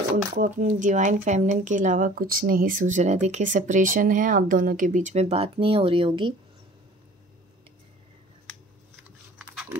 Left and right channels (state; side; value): normal; both; correlation 0.47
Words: उनको अपनी डिवाइन फेमिनिन के अलावा कुछ नहीं सूझ रहा है। देखिए सेपरेशन है, आप दोनों के बीच में बात नहीं हो रही होगी,